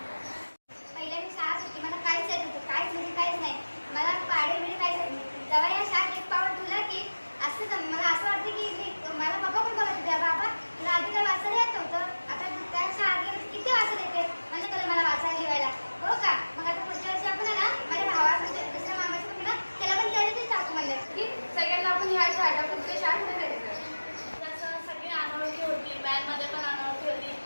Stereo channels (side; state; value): both; inverted; correlation -1.00